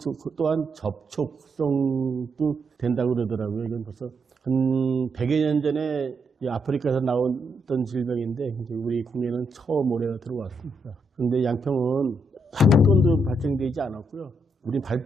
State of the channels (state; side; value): normal; both; correlation 0.79